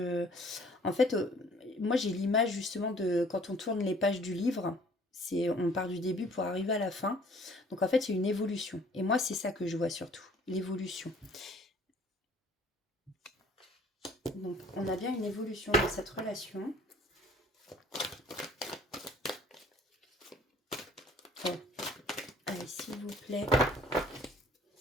En fait, moi, j'ai l'image justement de quand on tourne les pages du livre. On part du début pour arriver à la fin. Donc en fait, il y a une évolution. Et moi, c'est ça que je vois surtout, l'évolution. Donc, on a bien une évolution dans cette relation. Oh. Allez, s'il vous plaît.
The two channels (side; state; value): both; normal; correlation 0.55